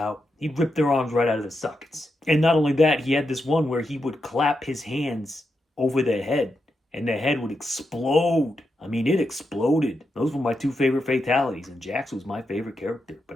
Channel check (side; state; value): both; normal; correlation 0.85